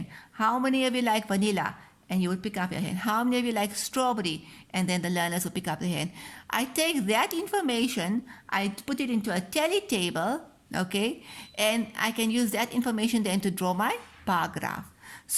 How many of you like vanilla? And you would pick up your hand. How many of you like strawberry? And then the learners would pick up their hand. I take that information, I put it into a tally table, okay, and I can use that information then to draw my bar graph.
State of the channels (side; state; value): both; identical; correlation 1.00